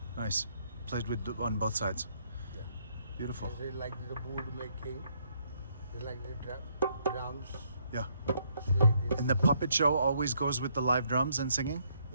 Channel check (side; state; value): both; inverted; correlation -0.71